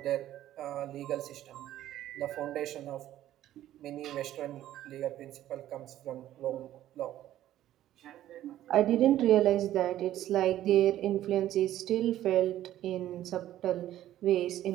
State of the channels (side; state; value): left; quieter; 13.0 dB